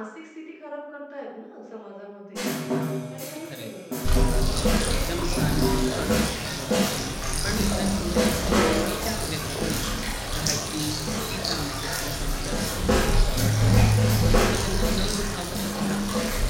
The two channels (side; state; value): both; identical; correlation 1.00